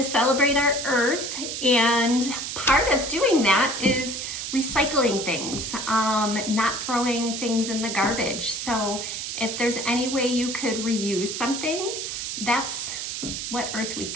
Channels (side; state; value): right; noise; hiss, 5 dB below the sound